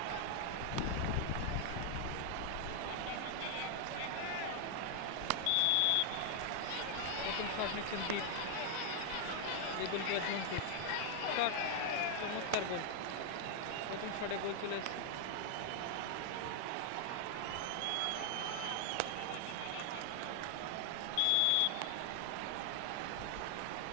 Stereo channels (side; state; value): both; different; correlation 0.00